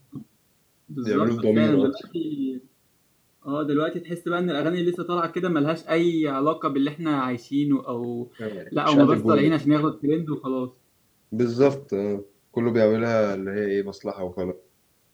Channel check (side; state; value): both; identical; correlation 1.00